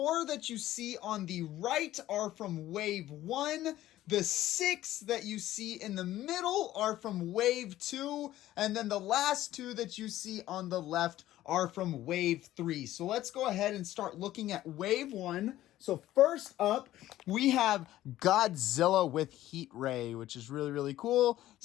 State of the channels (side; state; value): right; quieter; 14.3 dB